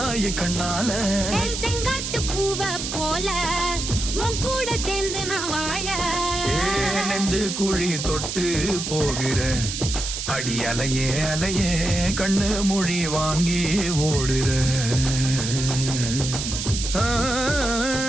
கண்ணால. செங்காட்டு பூவ போல உன் கூட சேர்ந்து நான் வாழ. நெஞ்சு குழி தொட்டு போகிற அடி அலையே அலையே கண்ணு மொழி வாங்கி ஓடுற. ஆ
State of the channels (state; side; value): noise; right; hiss, 4 dB below the sound